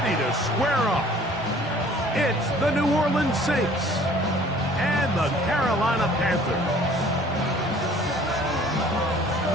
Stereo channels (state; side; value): normal; both; correlation 0.52